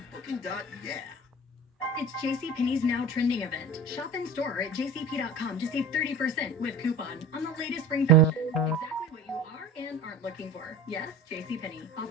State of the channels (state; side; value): normal; both; correlation 0.36